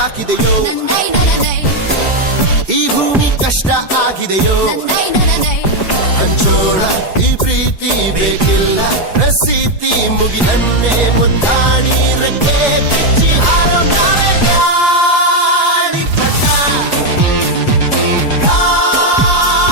ಈ ಭೂಮಿ ಕಷ್ಟ ಆಗಿದೆಯೋ ಹಂಚೋಳ ಈ ಪ್ರೀತಿ ಬೇಕಿಲ್ಲ ರಸೀತಿ ಮುಗಿದನ್ನೇ ಮುಂದಾಣಿ ರೆಕ್ಕೆ ಬಿಚ್ಚಿ ಹಾರೋ ನಾವೇ ಗಾಳಿಪಟ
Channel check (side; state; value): right; late; 4.8 ms